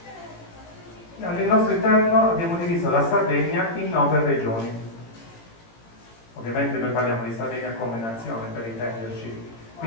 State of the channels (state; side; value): late; right; 18 ms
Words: Nel nostro interno abbiamo diviso la Sardegna in 9 regioni. Ovviamente noi parliamo di Sardegna come nazione, per intenderci.